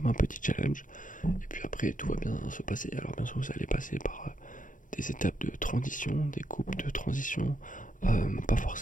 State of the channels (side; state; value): right; late; 0.38 ms